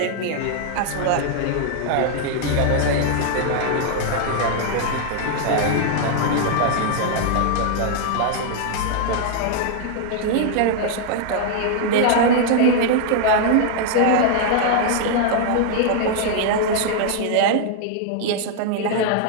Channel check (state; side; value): different; both; correlation 0.00